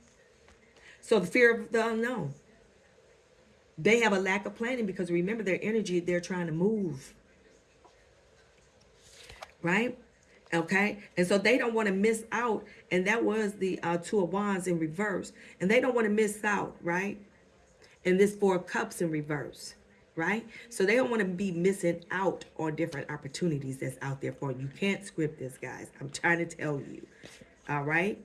So the fear of the unknown. They have a lack of planning because remember their energy, they're trying to move. Right? Okay? And so they don't want to miss out. And that was the Two of Wands in reverse. And they don't want to miss out, right? And this Four of Cups in reverse. Right? So they don't want to be missing out on different opportunities that's out there for you. You can't script this, guys. I'm trying to tell you. All right?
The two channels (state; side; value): identical; both; correlation 1.00